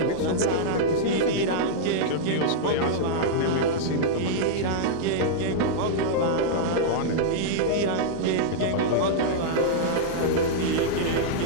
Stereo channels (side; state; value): both; different; correlation -0.02